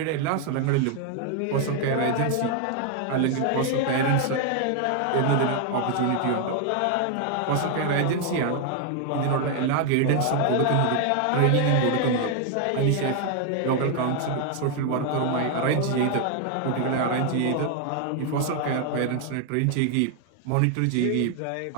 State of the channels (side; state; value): both; different; correlation 0.00